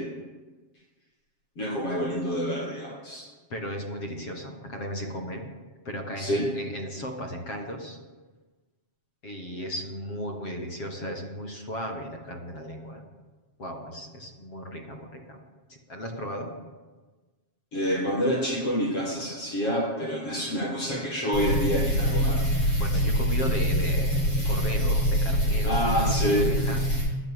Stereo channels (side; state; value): right; late; 7.4 ms